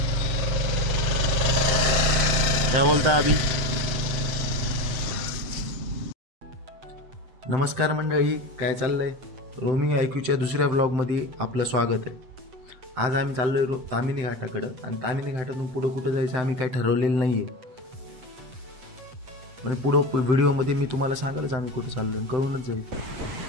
बोलता अभी? नमस्कार मंडळी, काय चाललंय? रोमिंग IQच्या दुसऱ्या व्लॉगमध्ये आपलं स्वागत आहे. आज आम्ही चाललोय तामिनी घाटाकडं आणि तामिनी घाटातून पुढं कुठं जायचं आम्ही काही ठरवलेलं नाहीये. म्हणजे पुढं व्हिडिओमध्ये मी तुम्हाला सांगालच आम्ही कुठं चाललोय, कळूनच जाईल.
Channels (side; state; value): left; late; 7.8 ms